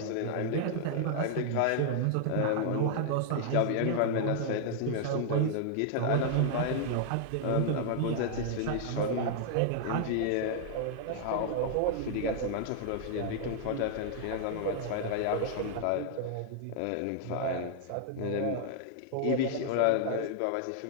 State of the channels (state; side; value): different; both; correlation -0.01